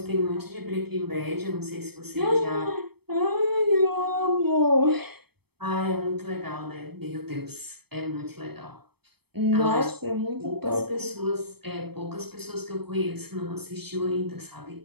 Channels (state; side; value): late; left; 0.97 ms